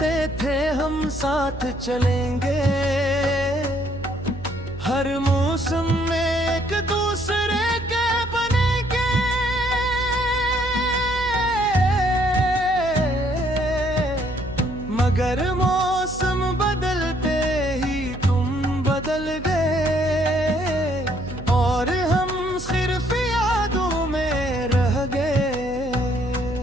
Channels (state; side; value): noise; right; hum, 13 dB below the sound